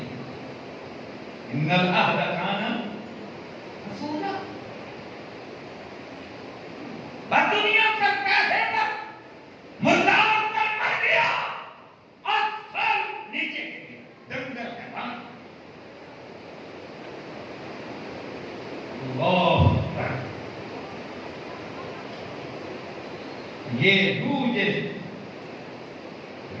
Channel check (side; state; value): both; identical; correlation 1.00